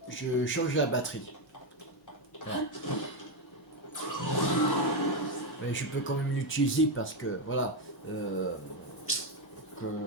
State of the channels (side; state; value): both; normal; correlation 0.07